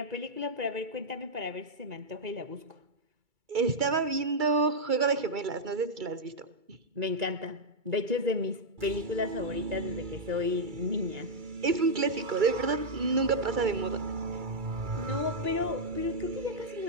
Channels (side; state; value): left; late; 2.3 ms